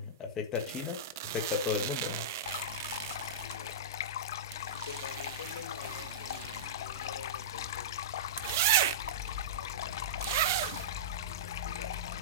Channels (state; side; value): normal; both; correlation -0.15